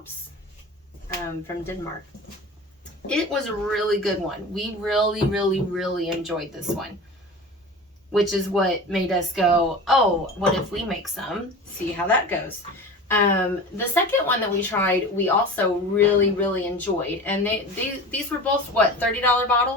from Denmark. It was a really good one. We really, really, really enjoyed this one. Which is what made us go, oh, what if we make some? See how that goes. The second one that we tried, we also really, really enjoyed. And these were both, what, $30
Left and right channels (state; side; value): normal; both; correlation 0.34